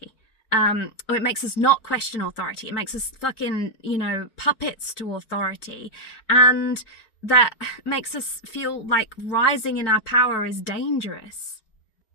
Or it makes us not question authority. It makes us fucking, puppets to authority. And that makes us feel like rising in our power is dangerous.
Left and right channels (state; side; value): late; right; 4.5 ms